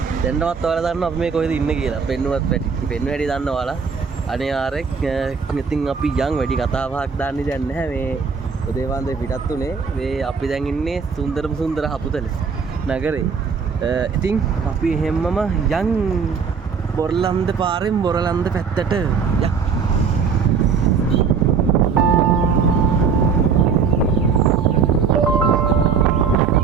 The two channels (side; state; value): left; quieter; 5.9 dB